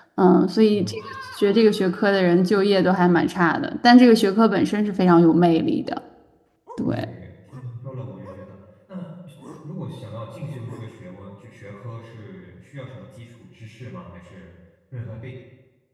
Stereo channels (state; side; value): identical; both; correlation 1.00